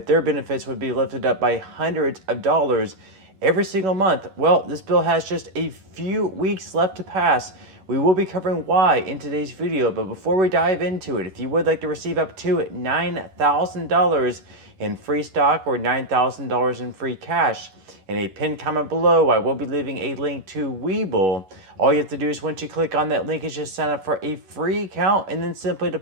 their benefits would be lifted up by hundreds of dollars every single month. Well, this bill has just a few weeks left to pass. We will be covering why in today's video, but before we dive into it, if you would like to receive up to $9,000 in free stock or $9,000 in free cash, in a pinned comment below, I will be leaving a link to Webull. All you have to do is once you click on that link is just sign up for a free account and then simply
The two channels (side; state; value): left; late; 11 ms